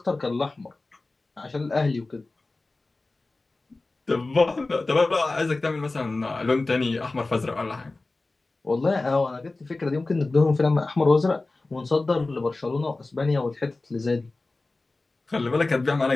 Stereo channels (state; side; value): quieter; right; 3.3 dB